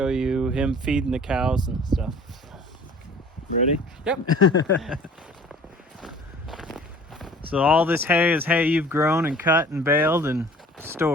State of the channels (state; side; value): normal; both; correlation 0.49